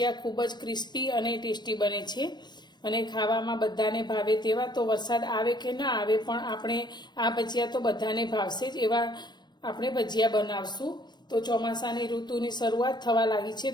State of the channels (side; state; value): right; late; 0.21 ms